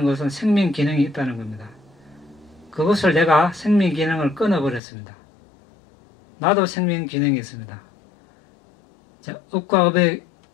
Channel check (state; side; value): drops out; right; at 4.8 s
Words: 것은 생명 기능이 있다는 겁니다. 그것을 내가 생명 기능을 끊어버렸습니다. 나도 생명 기능이 있습니다. 자, 업과 업의